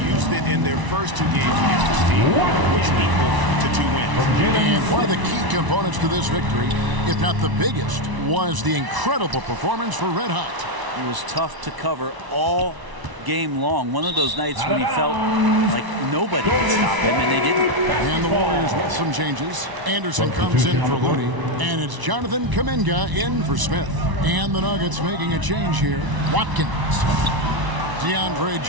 Used it in their first 2 games against this team, which equal to 2 wins. And one of the key components to this victory, if not the biggest, was the incredible performance for Red Hot. He was tough to cover all game long. One of those nights when he felt like nobody could stop him, and they didn't. And the Warriors with some changes. Anderson comes in for Looney, and it's Jonathan Kuminga in for Smith. And the Nuggets making a change here. Watkins. DeAndre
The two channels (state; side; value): late; left; 1.0 ms